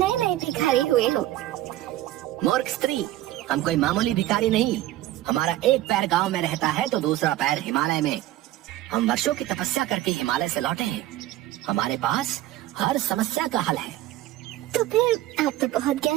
नए भिखारी हुए हो। मूर्ख स्त्री, हम कोई मामूली भिखारी नहीं। हमारा एक पैर गांव में रहता है तो दूसरा पैर हिमालय में। हम वर्षों की तपस्या करके हिमालय से लौटे हैं। हमारे पास हर समस्या का हल है। तो फिर आप तो बहुत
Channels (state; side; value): quieter; left; 15.0 dB